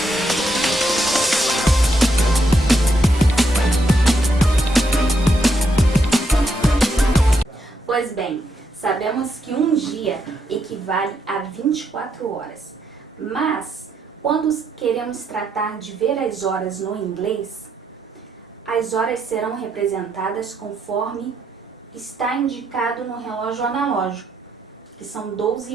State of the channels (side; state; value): both; normal; correlation 0.78